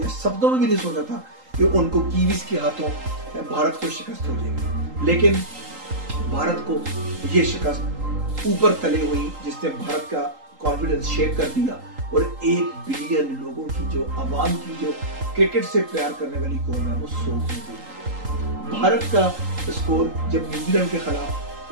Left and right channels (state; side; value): late; left; 3.8 ms